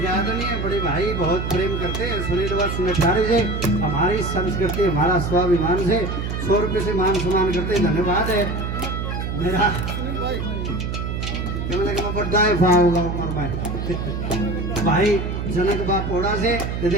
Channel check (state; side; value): noise; right; hum, 3 dB below the sound